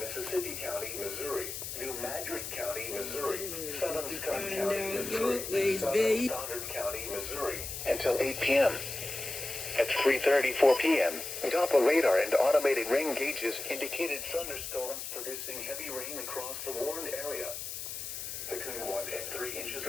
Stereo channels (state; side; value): noise; left; hiss, 6 dB below the sound